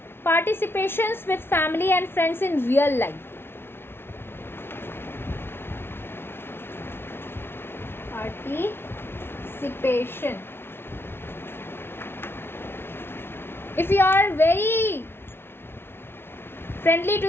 participations with family and friends in real life. Participation. If you are very friendly to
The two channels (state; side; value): late; right; 0.11 ms